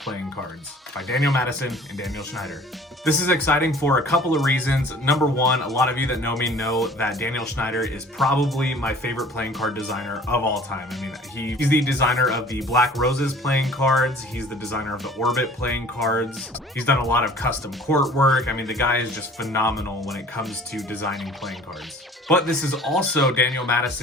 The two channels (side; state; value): both; normal; correlation 0.49